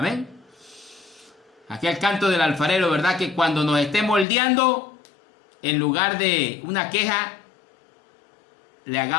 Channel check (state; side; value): drops out; right; at 4.2 s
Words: Aquel canto del alfarero, ¿verdad?, que cuando nos esté moldeando, en lugar de una queja, le